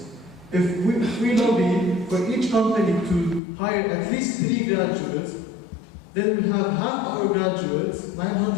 If we lobby for each company to hire at least 3 graduates, then we'll have half our graduates,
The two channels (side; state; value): right; drops out; at 3.4 s